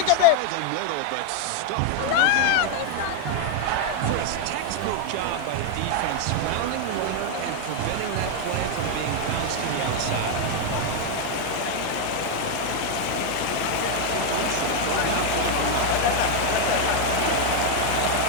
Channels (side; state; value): both; different; correlation 0.01